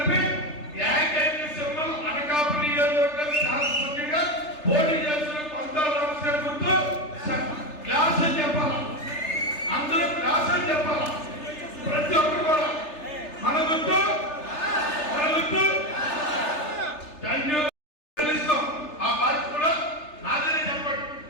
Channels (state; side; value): late; right; 3.3 ms